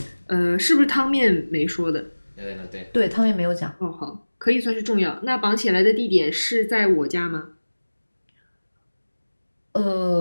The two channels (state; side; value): inverted; both; correlation -1.00